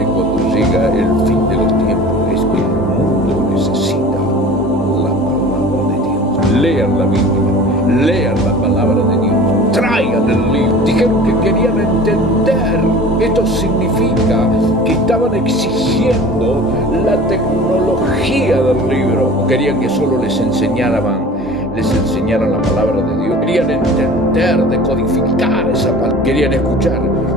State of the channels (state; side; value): normal; both; correlation 0.41